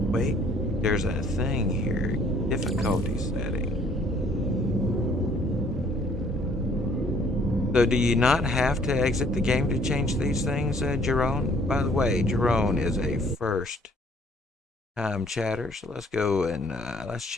wait, there's a thing here. Difficulty setting. So do you not have to exit the game to change these things, Jerome? By the way, Jerome is a first time chatter, so let's go and let's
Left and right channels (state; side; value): normal; both; correlation 0.60